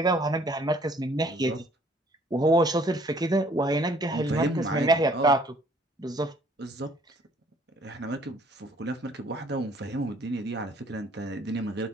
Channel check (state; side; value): normal; both; correlation 0.59